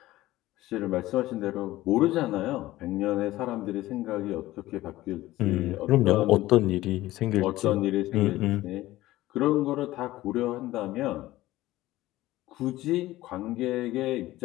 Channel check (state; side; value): quieter; right; 16.6 dB